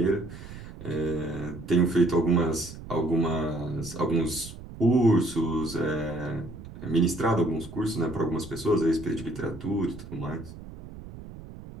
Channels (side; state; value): right; noise; rumble, 14 dB below the sound